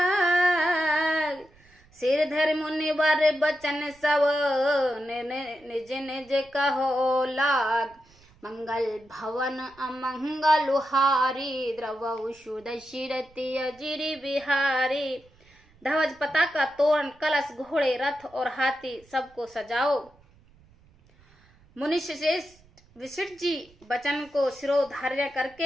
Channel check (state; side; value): noise; right; rumble, 29 dB below the sound